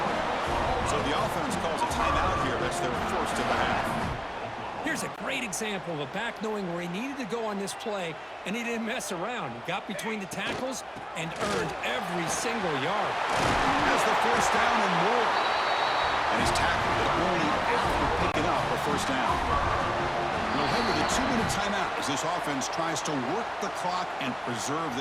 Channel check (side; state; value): both; identical; correlation 1.00